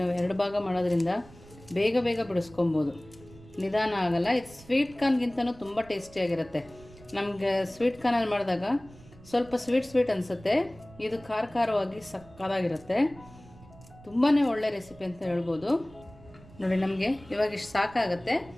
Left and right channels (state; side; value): noise; right; rumble, 22 dB below the sound